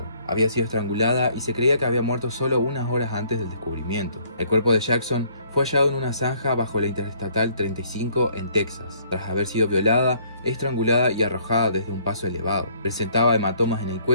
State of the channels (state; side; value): inverted; both; correlation -0.62